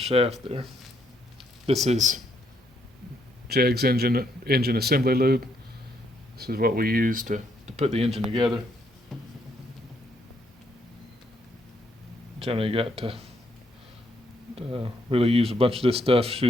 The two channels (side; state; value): both; normal; correlation 0.73